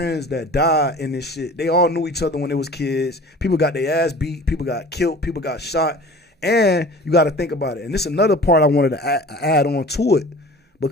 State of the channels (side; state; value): both; normal; correlation 0.42